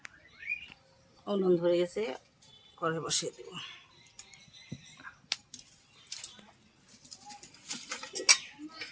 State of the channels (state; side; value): identical; both; correlation 1.00